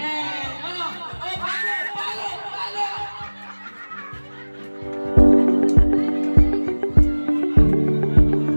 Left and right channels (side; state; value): both; inverted; correlation -1.00